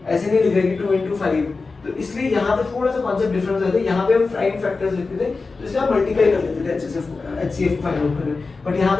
ऐसे नहीं लिख रहे कि 2 into 5। तो इसलिए यहाँ पे थोड़ा सा कॉन्सेप्ट डिफरेंस आता है। यहाँ पे हम प्राइम फैक्टर्स लिखते थे, तो इसलिए आप मल्टीप्लाई कर लेते थे HCF को फाइंड आउट करने। बट यहाँ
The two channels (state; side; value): quieter; right; 4.0 dB